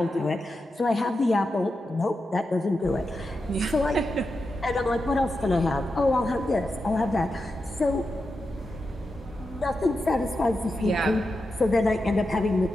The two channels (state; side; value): normal; both; correlation 0.89